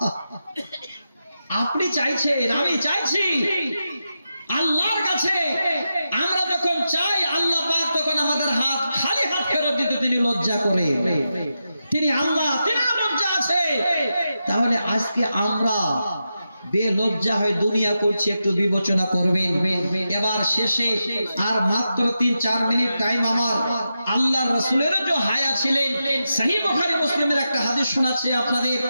আপনি চাইছেন, আমি চাইছি, আল্লাহর কাছে আমরা যখন চাই আল্লাহ পাক তখন আমাদের হাত খালি হাত ফেরত দিতে তিনি লজ্জা করে। তিনি আল্লাহ, তিনি লজ্জা আছে। তাহলে আজকে আমরা বেলজ্জা হয়ে দুনিয়া করছি, একটু বিবেচনা করবেন। এবার শেষে আর মাত্র 3-4 মিনিট টাইম আমার। আল্লাহর রাসূলের যে হায়া ছিলেন, সহিহ বুখারী মুসলিমের একটা হাদিস শোনাচ্ছি আপনাদের,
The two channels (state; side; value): inverted; both; correlation -0.89